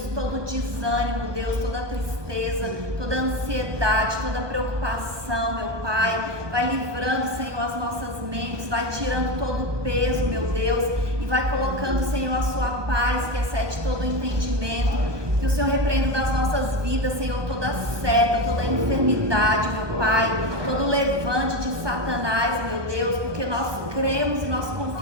todo desânimo, Deus, toda tristeza, toda ansiedade, toda preocupação, meu Pai. Vai livrando, Senhor, as nossas mentes, vai tirando todo o peso, meu Deus, e vai colocando, Senhor, a sua paz, que excede todo o entendimento. Que o Senhor repreenda das nossas vidas, Senhor, toda seta, toda enfermidade, meu Pai, todo levante de Satanás, meu Deus, porque nós cremos e nós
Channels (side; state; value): left; late; 1.2 ms